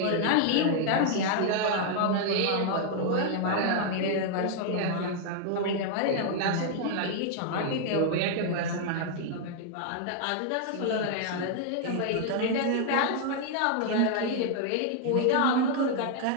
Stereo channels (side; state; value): both; different; correlation 0.00